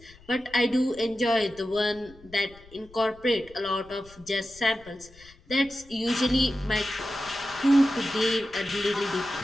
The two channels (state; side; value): noise; left; rumble, 24 dB below the sound